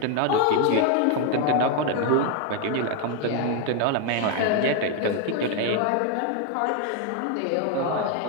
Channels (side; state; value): both; different; correlation 0.01